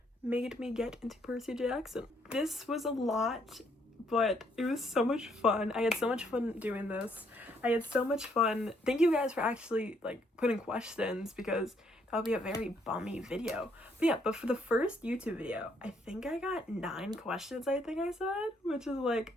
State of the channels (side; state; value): both; normal; correlation 0.70